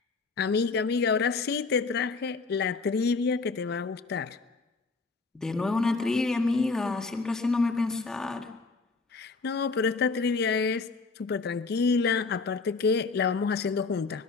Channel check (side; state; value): right; quieter; 4.2 dB